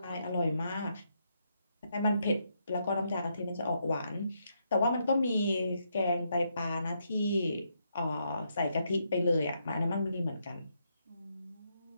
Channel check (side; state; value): both; inverted; correlation -0.78